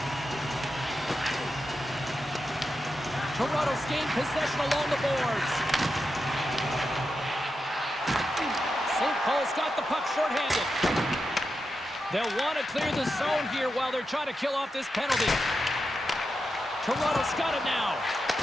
Toronto's gained possession along the boards. St. Paul's got the puck shorthanded. They'll want to clear the zone here while they're trying to kill off this penalty. Toronto's got it now.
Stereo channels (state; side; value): normal; both; correlation 0.88